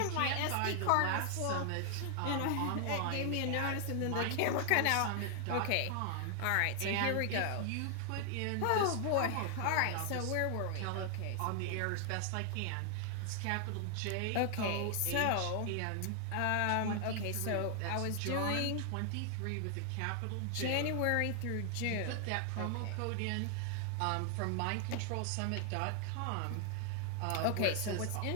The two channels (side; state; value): both; different; correlation 0.00